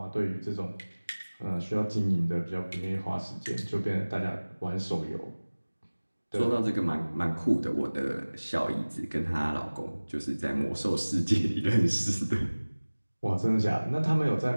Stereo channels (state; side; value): inverted; both; correlation -1.00